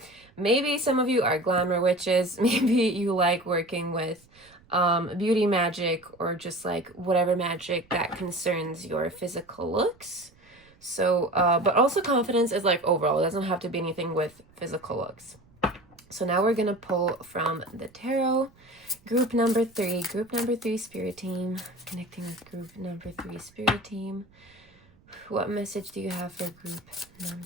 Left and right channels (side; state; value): right; noise; rumble, 29 dB below the sound